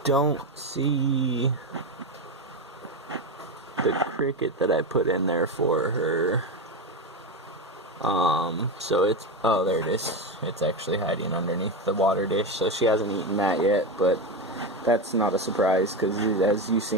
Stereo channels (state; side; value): normal; both; correlation 0.15